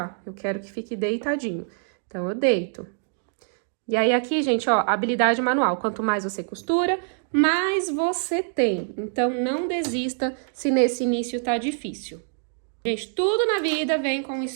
eu quero que fique deitadinho. Então, eu deito. E aí, aqui, gente, ó, habilidade manual. Quanto mais você costura, mais você tem. Então, não desista se nesse início tá difícil. Gente, tudo na vida vem com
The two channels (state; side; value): silent; left; digital silence